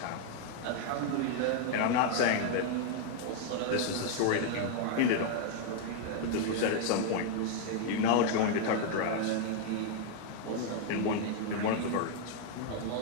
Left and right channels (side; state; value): both; different; correlation 0.00